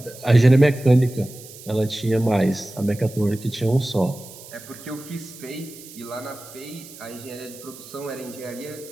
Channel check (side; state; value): right; noise; hiss, 17 dB below the sound